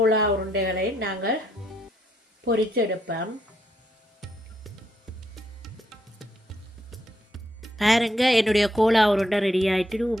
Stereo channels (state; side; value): normal; both; correlation 0.76